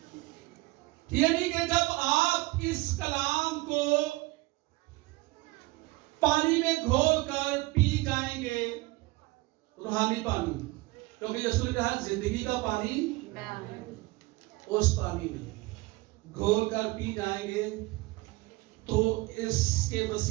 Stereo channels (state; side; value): quieter; left; 21.7 dB